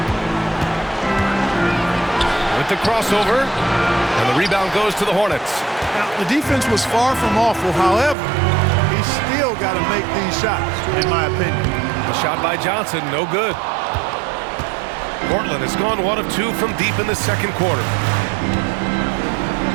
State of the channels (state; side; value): drops out; left; at 8.2 s